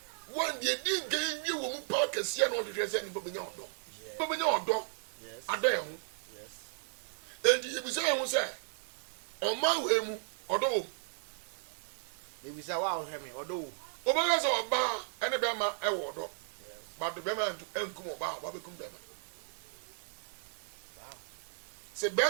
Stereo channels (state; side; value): silent; left; digital silence